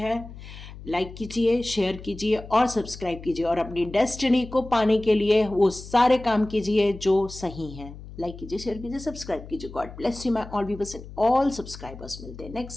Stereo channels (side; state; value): left; noise; hum, 14 dB below the sound